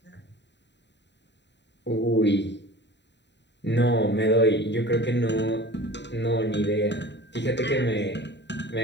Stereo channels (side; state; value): right; late; 0.51 ms